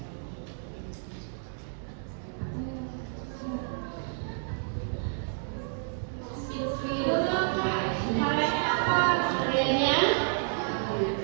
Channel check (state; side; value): silent; left; digital silence